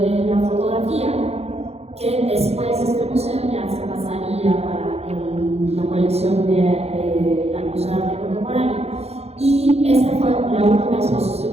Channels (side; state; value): left; late; 0.30 ms